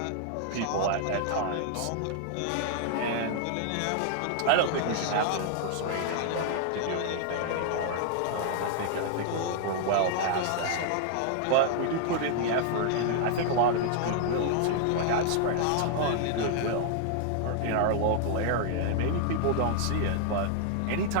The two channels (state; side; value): different; both; correlation -0.01